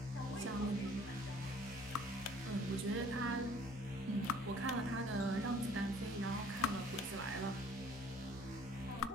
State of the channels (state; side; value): normal; both; correlation 0.55